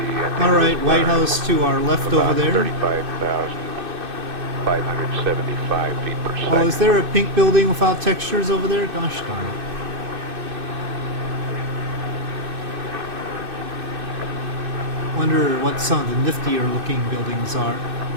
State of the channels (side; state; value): left; late; 2.6 ms